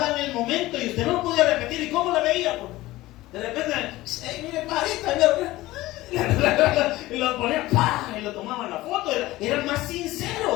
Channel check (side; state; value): right; quieter; 17.8 dB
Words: el momento y usted no lo podía repetir. ¿Y cómo la veía? De repente, mire, parita, y lo ponían, ¡pah! Y lo tomaban la foto. Era más